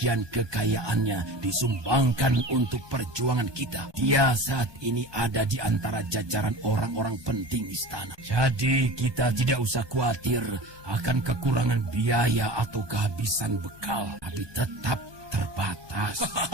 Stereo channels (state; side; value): late; left; 1.2 ms